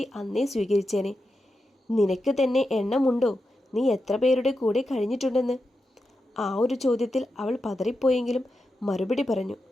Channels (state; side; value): normal; both; correlation 0.89